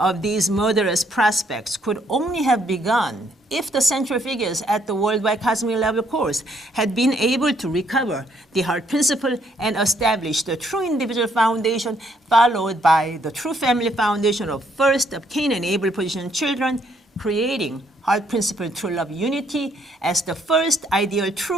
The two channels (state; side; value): normal; both; correlation 0.70